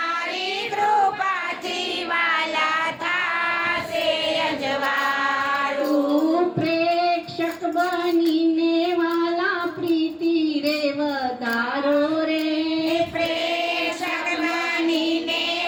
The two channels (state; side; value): identical; both; correlation 1.00